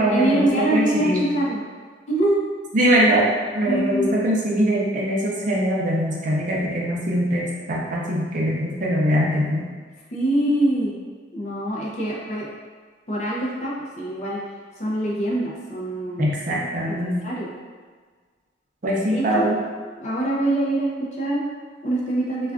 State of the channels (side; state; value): both; normal; correlation 0.59